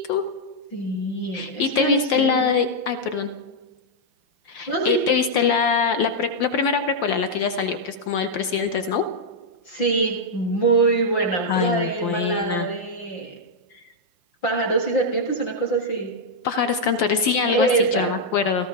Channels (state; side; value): late; right; 5.9 ms